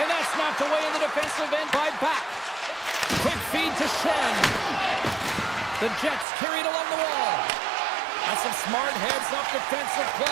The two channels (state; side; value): drops out; left; at 6.2 s